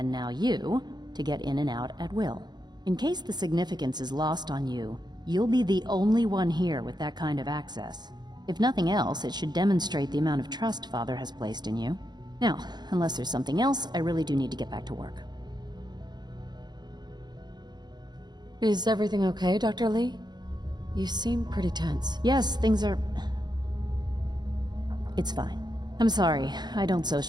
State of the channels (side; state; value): left; late; 0.21 ms